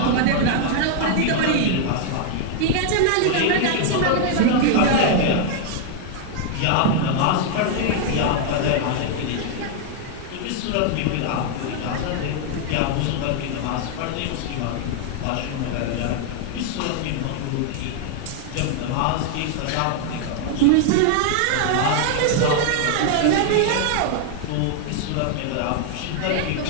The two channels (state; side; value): different; both; correlation 0.00